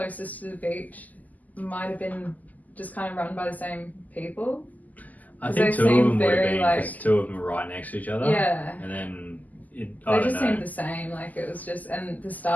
to the beach might have been just kind of run by the same people. I think 2 of them would have been, because 2 of them were right next to each other. Yeah. And then they just seemed the same. Like it was just, and the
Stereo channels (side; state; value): right; late; 0.080 ms